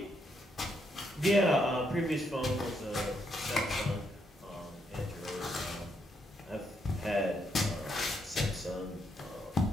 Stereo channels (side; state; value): both; normal; correlation 0.77